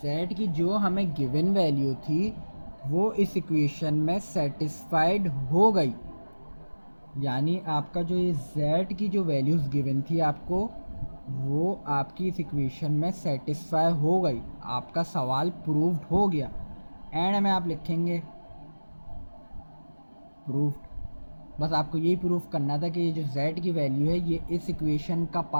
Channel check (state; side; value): inverted; both; correlation -1.00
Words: की जो हमें गिवन वैल्यू थी वो इस इक्वेशन में सेटिस्फाइड हो गई, यानी आपका जो ये z की जो वैल्यूज़ गिवन थी आपको वो आपकी इस इक्वेशन में सेटिस्फाई हो गई, आपका सवाल प्रूव्ड हो गया। एंड में आप लिखेंगे प्रूव्ड। बस आपको यही प्रूफ करना था कि ये जो z की वैल्यू है ये इस इक्वेशन का